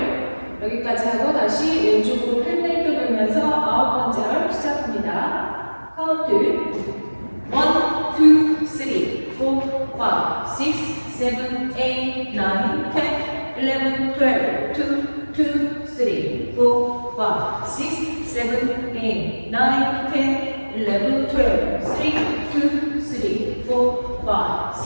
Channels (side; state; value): both; inverted; correlation -1.00